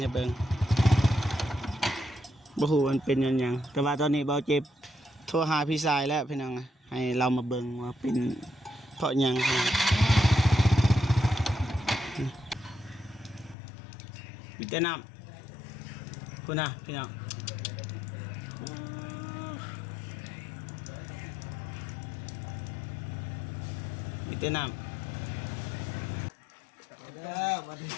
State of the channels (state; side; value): drops out; right; at 13.6 s